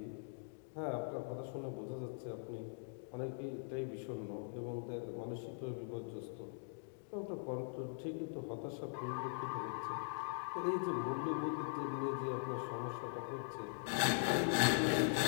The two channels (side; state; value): right; silent; digital silence